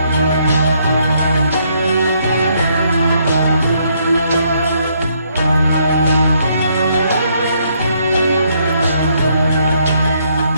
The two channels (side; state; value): both; inverted; correlation -0.71